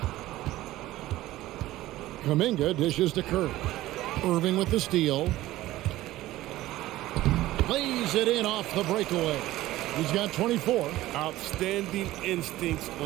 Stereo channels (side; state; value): left; quieter; 16.1 dB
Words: Kuminga dishes to Curry. Irving with the steal. Lays it in off the breakaway. He's got 24. Outstanding instincts